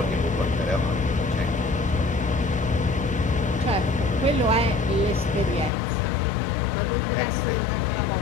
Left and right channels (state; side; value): drops out; right; at 5.7 s